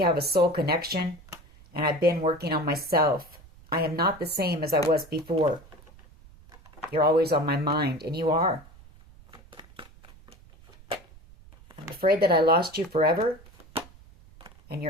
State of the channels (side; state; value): right; noise; rumble, 23 dB below the sound